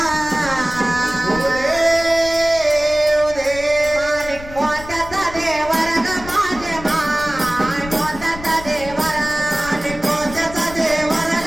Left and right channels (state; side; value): noise; left; rumble, 14 dB below the sound